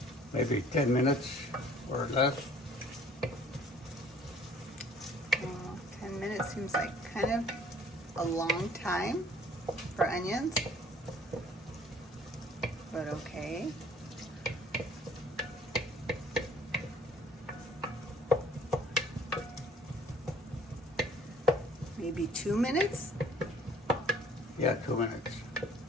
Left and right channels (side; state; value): both; normal; correlation 0.55